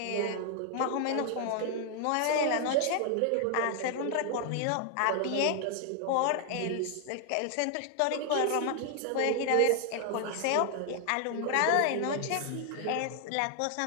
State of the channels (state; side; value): different; both; correlation 0.00